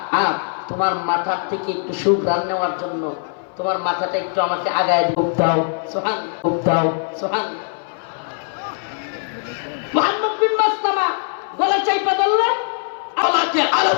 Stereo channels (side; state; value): right; silent; 60 dB below the other